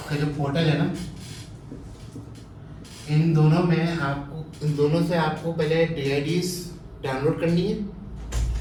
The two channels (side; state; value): both; identical; correlation 1.00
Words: का जो पोर्टल है ना, इन दोनों से आपको पहले DIDs डाउनलोड करनी है,